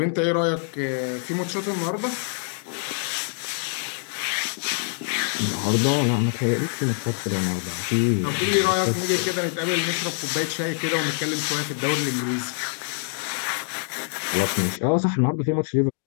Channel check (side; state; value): right; silent; 62 dB below the other